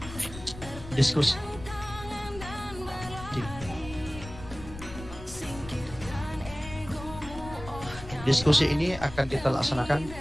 diskusi. Diskusi ini akan kita laksanakan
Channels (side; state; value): left; noise; rumble, 13 dB below the sound